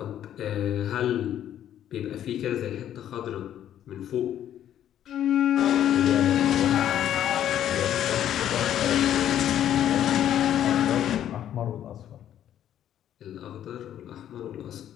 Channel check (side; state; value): right; quieter; 10.9 dB